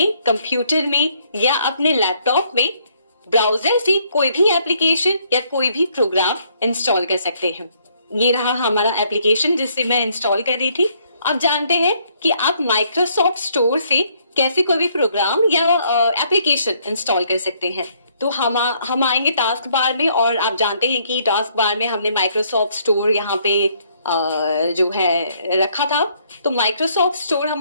कंप्यूटर में या अपने लैपटॉप में ब्राउजर से कोई भी एप्लीकेशन या कोई भी प्रोग्राम इंस्टॉल कर सकते हैं। ये रहा हमारा एप्लीकेशन जिससे मैं इंस्टॉल कर रही थी। अब जानते हैं कि आप माइक्रोसॉफ्ट स्टोर से कैसे कोई भी प्रोग्राम या एप्लीकेशन इंस्टॉल कर सकते हैं। तो हम आएंगे टास्क बार में और आप जानते हैं कि टास्क बार में हमने माइक्रोसॉफ्ट स्टोर यहाँ पे जो है रखा था। तो माइक्रोसॉफ्ट स्टोर हम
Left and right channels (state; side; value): inverted; both; correlation -0.68